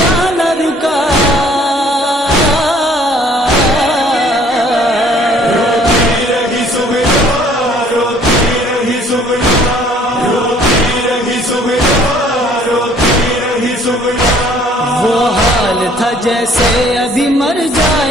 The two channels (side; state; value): both; normal; correlation 0.58